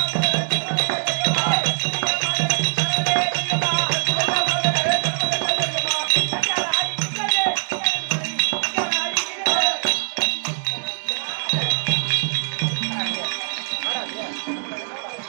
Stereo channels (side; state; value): left; silent; digital silence